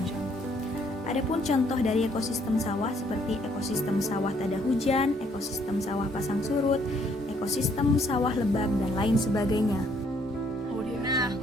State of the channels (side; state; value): both; normal; correlation 0.66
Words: Adapun contoh dari ekosistem sawah seperti ekosistem sawah tada hujan, ekosistem sawah pasang surut, ekosistem sawah lebak, dan lain sebagainya. Nah,